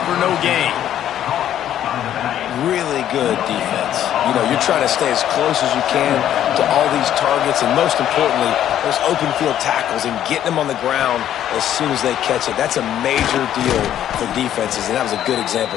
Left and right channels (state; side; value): quieter; right; 11.1 dB